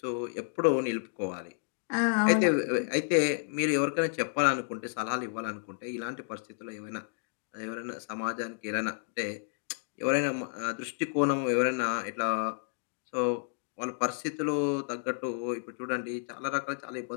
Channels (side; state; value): right; silent; digital silence